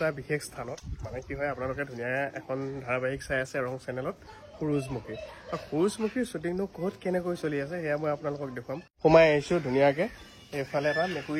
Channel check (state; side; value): identical; both; correlation 1.00